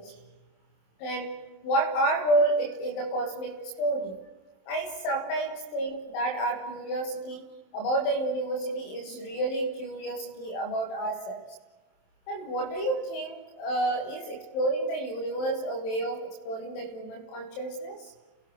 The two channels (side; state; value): right; late; 27 ms